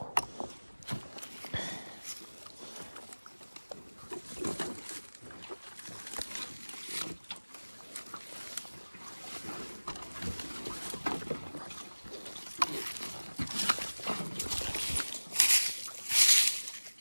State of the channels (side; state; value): both; inverted; correlation -1.00